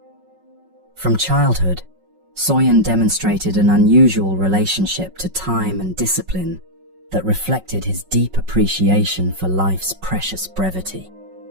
From childhood, Soyen demonstrated an unusual relationship to time and discipline that reflected his deep appreciation for life's precious brevity.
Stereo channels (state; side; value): late; left; 5.4 ms